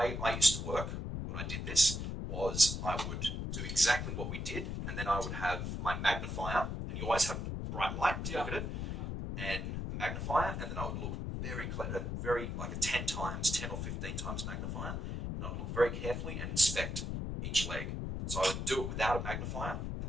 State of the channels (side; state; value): left; noise; rumble, 3 dB below the sound